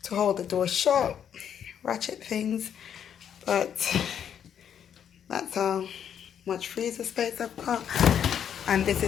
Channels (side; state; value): right; quieter; 8.7 dB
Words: to hold the door shut, ratchet things, but that's how much freezer space I've got. And this